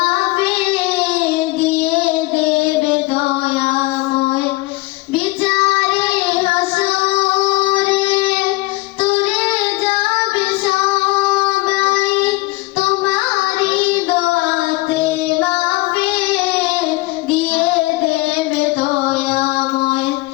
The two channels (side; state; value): right; quieter; 22.3 dB